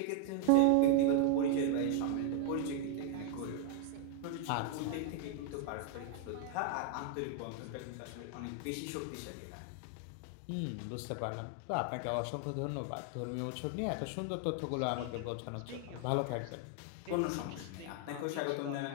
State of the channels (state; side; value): different; both; correlation 0.00